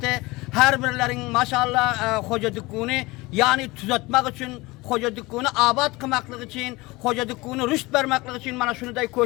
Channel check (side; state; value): right; quieter; 22.2 dB